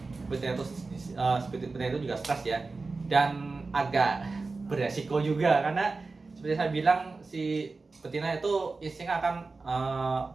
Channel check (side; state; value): left; quieter; 3.9 dB